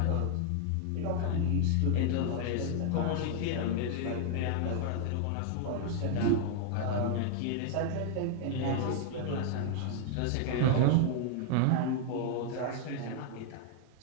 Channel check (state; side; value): different; both; correlation 0.00